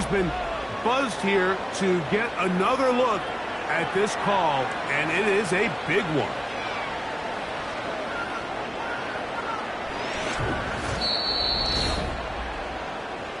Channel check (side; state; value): both; identical; correlation 1.00